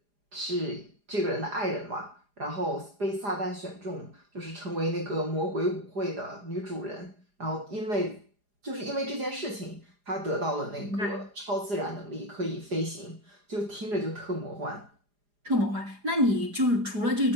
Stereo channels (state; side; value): late; left; 4.9 ms